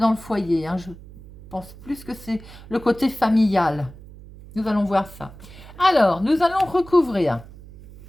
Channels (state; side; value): noise; right; hum, 18 dB below the sound